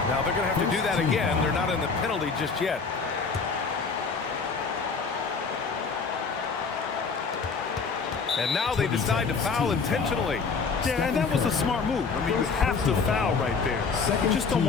Now they're going to have to do that again. They're not in the penalty just yet. And now they decide to foul intentionally. Yeah, and that was a smart move. I mean, you have to foul right there. You just don't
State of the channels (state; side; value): quieter; right; 5.0 dB